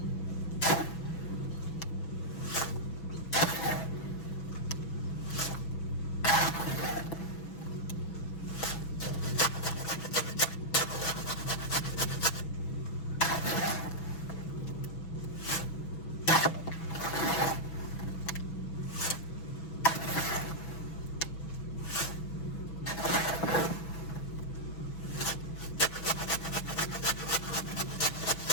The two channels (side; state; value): right; late; 6.1 ms